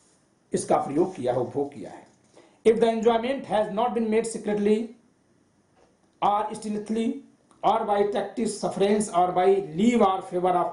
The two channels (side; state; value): both; identical; correlation 1.00